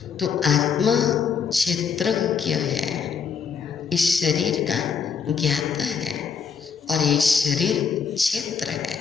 तो आत्मा क्षेत्रज्ञ है, इस शरीर का ज्ञाता है, और ये शरीर क्षेत्र है।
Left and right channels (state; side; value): quieter; right; 6.3 dB